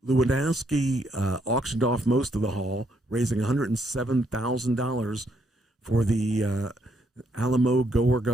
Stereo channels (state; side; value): normal; both; correlation 0.73